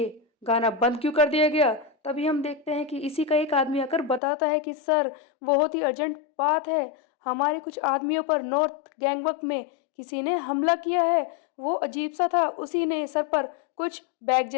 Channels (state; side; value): drops out; right; at 4.2 s